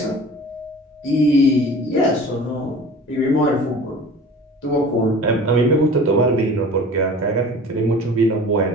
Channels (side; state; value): both; normal; correlation 0.41